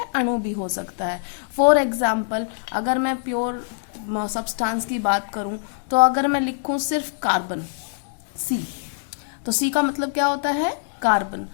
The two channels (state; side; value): silent; right; digital silence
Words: अणु भी हो सकता है। फॉर एग्जाम्पल अगर मैं प्योर सब्सटेंस की बात करूं तो अगर मैं लिखूं सिर्फ कार्बन सी, तो सी का मतलब क्या होता है? कार्बन।